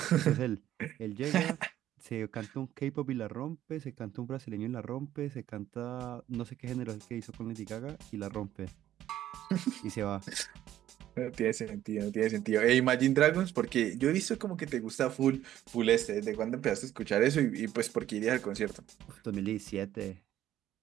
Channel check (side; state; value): left; quieter; 12.5 dB